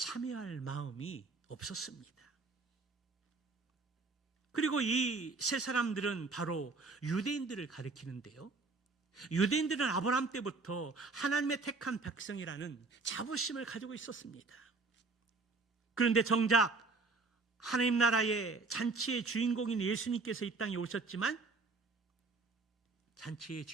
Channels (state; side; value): quieter; left; 3.9 dB